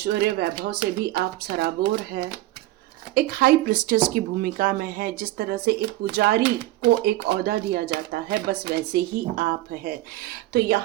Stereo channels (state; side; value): quieter; left; 16.8 dB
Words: वैभव से भी आप सराबोर है। एक हाई प्रिस्टेस की भूमिका में है। जिस तरह से एक पुजारी को एक ओहदा दिया जाता है, बस वैसे ही आप है। तो